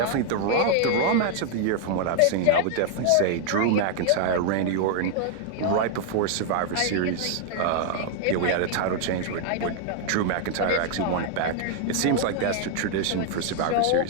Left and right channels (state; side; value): different; both; correlation 0.00